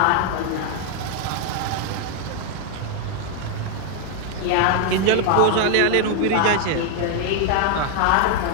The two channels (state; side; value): different; both; correlation 0.01